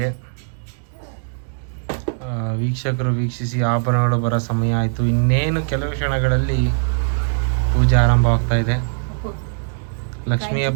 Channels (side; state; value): left; silent; 65 dB below the other